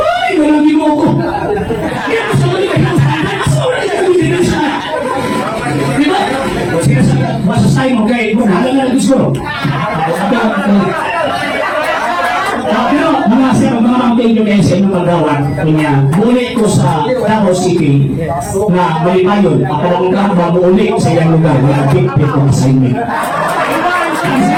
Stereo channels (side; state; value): both; identical; correlation 1.00